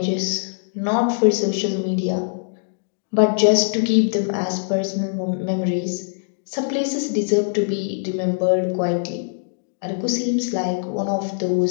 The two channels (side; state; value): right; silent; digital silence